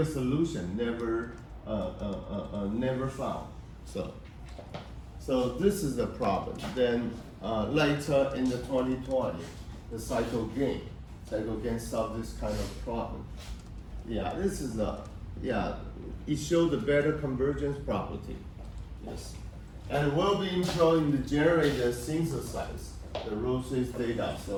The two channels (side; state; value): both; identical; correlation 1.00